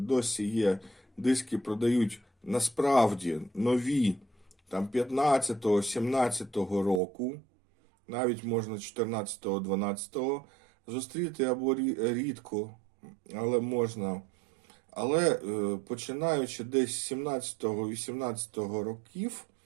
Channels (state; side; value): drops out; left; at 7.0 s